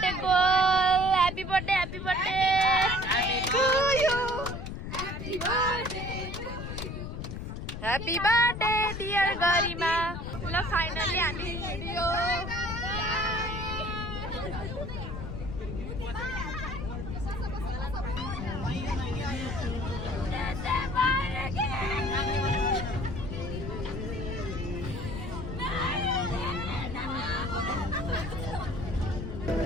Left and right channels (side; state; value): left; noise; rumble, 6 dB below the sound